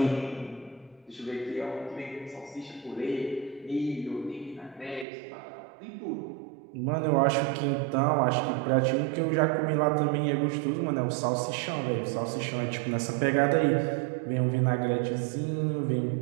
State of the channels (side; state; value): left; drops out; at 5.1 s